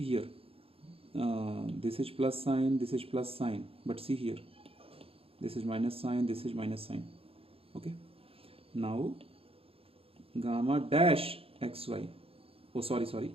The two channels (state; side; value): late; left; 0.27 ms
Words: here, this is plus sign, this is plus sign, but see here, this is minus sign, this is minus sign. Okay, now gamma dash xy, oh sorry,